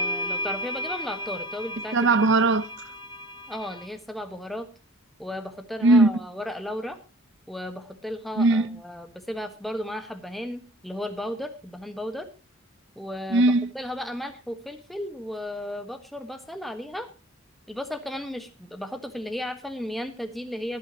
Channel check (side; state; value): both; normal; correlation 0.47